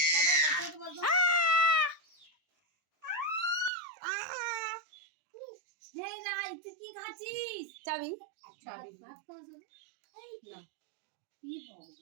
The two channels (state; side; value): drops out; left; at 3.7 s